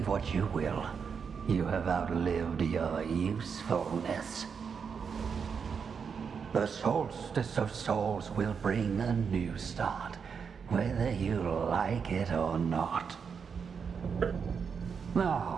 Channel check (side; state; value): left; quieter; 6.3 dB